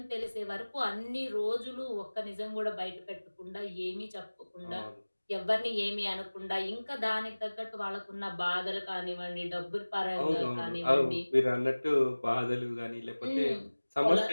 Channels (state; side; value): inverted; both; correlation -1.00